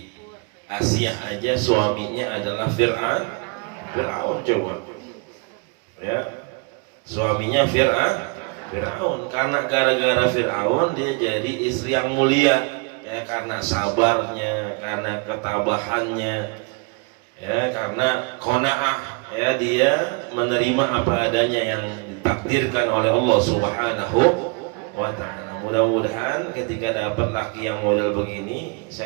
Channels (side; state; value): left; quieter; 30.7 dB